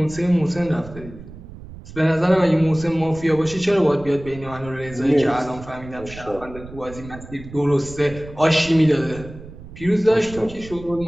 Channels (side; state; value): right; noise; rumble, 16 dB below the sound